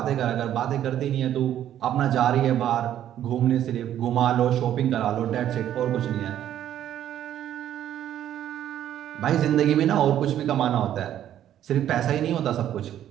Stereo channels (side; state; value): left; quieter; 11.2 dB